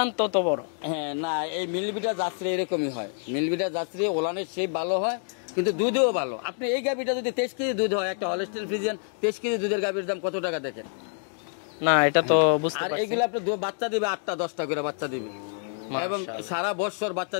তত বড়। হ্যাঁ, না এই মিলবিটা যাত্রী এরকমই হয়। মিলবিটা যাত্রী ওলানের শেপ ভালো হয়, কিন্তু দুধেও ভালো। আপনি এই গাবিটা যদি 23 কেজি দুধ হয়, একটা হলস্টেইন ফ্রিজিয়ান 23 কেজি দুধের গাবির দাম কত টাকা দেখেন না? এটা তো আর এইগুলো আপনি বাচ্চা দিবে 8টা-10টা করে বাচ্চা দিবে এবং সারা বছর বাচ্চা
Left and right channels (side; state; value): right; silent; 60 dB below the other